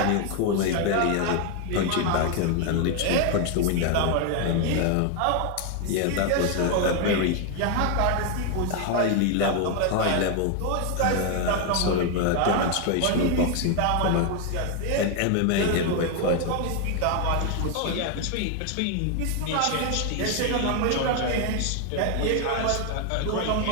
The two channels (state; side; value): different; both; correlation 0.01